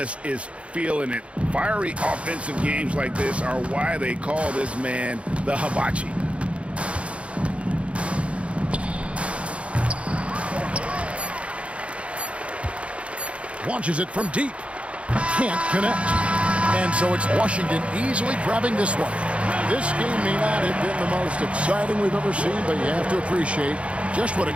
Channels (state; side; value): late; left; 0.061 ms